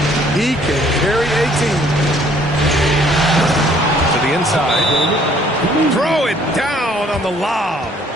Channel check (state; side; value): normal; both; correlation 0.61